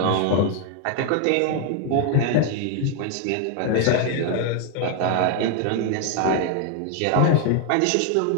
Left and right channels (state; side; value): different; both; correlation 0.00